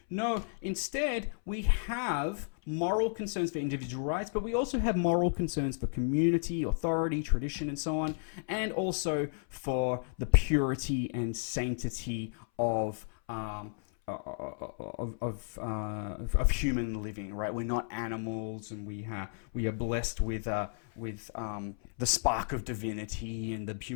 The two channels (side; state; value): right; silent; 56 dB below the other